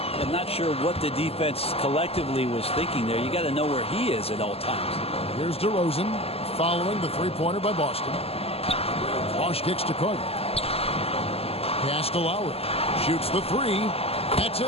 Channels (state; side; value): late; right; 0.29 ms